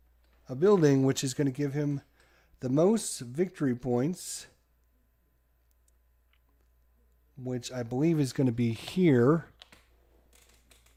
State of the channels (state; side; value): identical; both; correlation 1.00